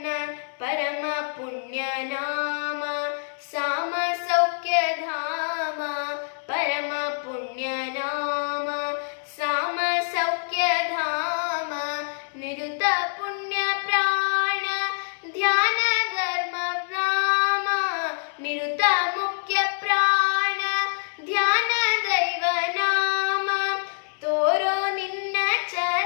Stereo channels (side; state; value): right; silent; digital silence